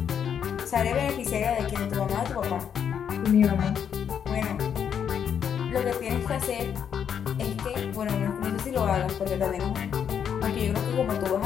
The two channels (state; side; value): quieter; right; 8.1 dB